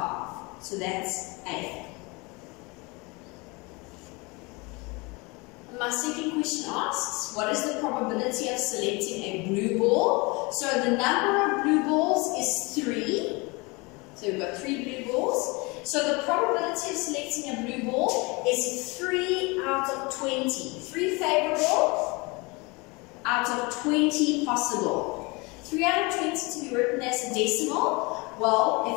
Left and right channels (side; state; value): right; quieter; 26.6 dB